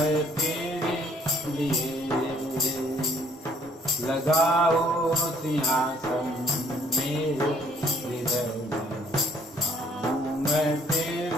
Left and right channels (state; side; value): normal; both; correlation 0.61